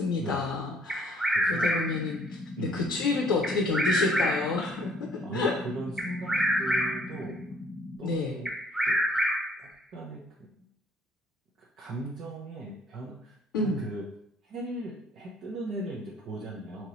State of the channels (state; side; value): normal; both; correlation 0.60